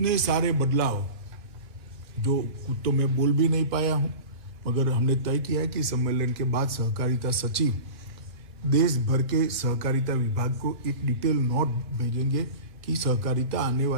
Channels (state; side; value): late; left; 2.7 ms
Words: सारे बदलाव जो कुछ तो मैं बोल भी नहीं पाया हूं, मगर हमने तय किया है कि सम्मेलन के बाद सहकारिता सचिव देश भर के सहकारिता विभाग को एक डिटेल नोट भेजेंगे कि सहकारिता